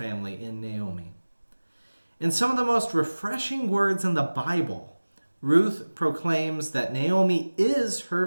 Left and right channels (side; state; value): both; inverted; correlation -1.00